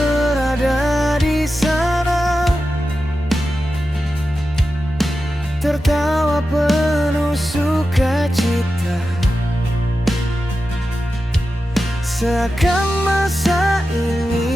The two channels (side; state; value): both; normal; correlation 0.92